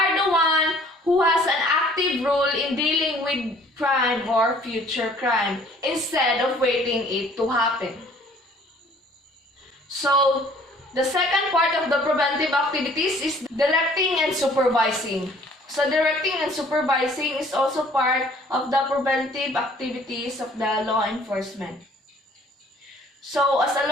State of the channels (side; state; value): both; normal; correlation 0.56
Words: the one who has an active role in dealing with crime or future crime instead of waiting it to happen. So the second part of the preventive activities is directing and supervising. So directing and supervising is also part of the preventive activities of the law enforcement. So as a